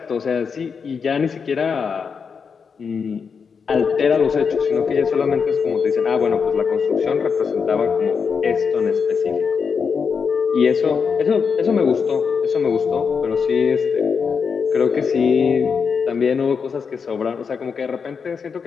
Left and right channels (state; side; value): quieter; right; 5.9 dB